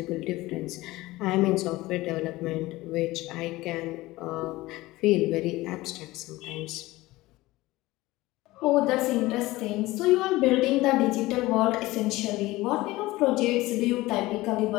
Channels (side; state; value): right; quieter; 18.9 dB